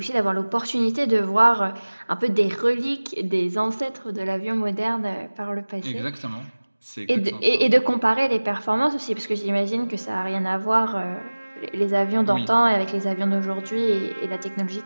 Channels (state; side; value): inverted; both; correlation -1.00